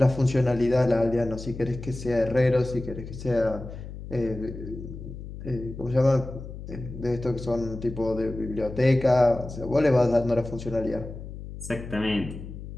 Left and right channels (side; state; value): left; noise; hum, 11 dB below the sound